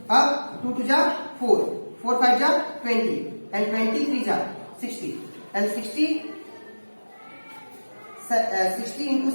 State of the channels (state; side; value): inverted; both; correlation -1.00